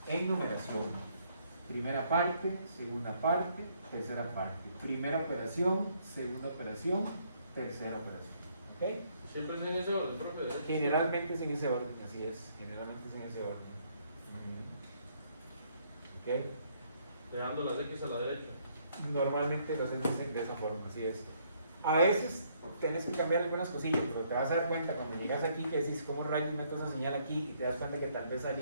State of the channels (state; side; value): inverted; both; correlation -0.68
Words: en numeración. Primera parte, segunda parte, tercera parte. Primera operación, segunda operación, tercera operación. ¿Ok? Siempre es en ese orden, profe. Generalmente es en ese orden, así es. Generalmente es en ese orden. ¿Ok? Dejando las X a la derecha. Normalmente lo haces de esa forma, así es. A veces tienes que cambiar algunas cosillas, pero te vas a dar cuenta cuando llegas aquí que decís cómo rayos meto esa señal aquí y te das cuenta que tal vez